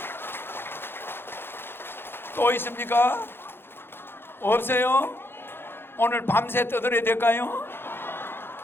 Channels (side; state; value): right; late; 0.11 ms